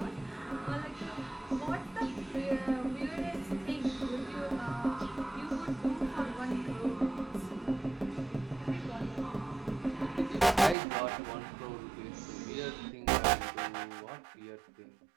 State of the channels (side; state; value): left; drops out; at 10.8 s